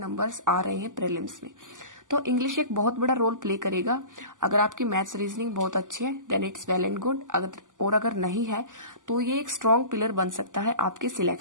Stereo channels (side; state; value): left; late; 0.87 ms